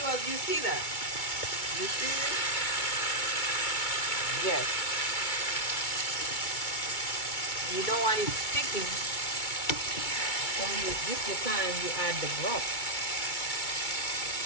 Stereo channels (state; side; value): late; right; 2.2 ms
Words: You see that? You see it? Yes. You don't want it sticking, so this is the time you add the broth.